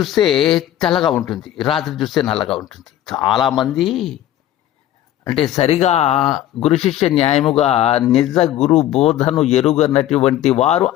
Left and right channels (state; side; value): quieter; right; 12.7 dB